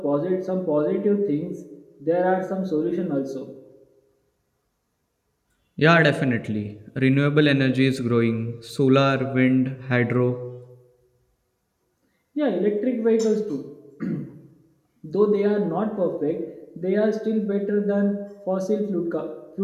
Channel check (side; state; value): both; identical; correlation 1.00